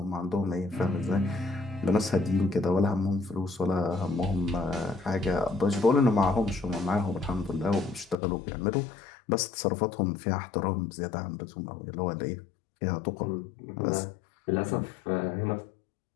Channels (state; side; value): drops out; right; at 8.2 s